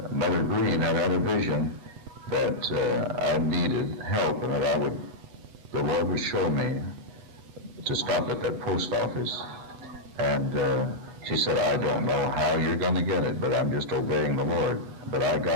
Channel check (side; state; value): left; late; 8.1 ms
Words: Mother Green had a vision that I needed help, and that the Lord would show me to stop at that post office. And she said, I don't know how you're going to get it, but I'm just obeying the Lord. But I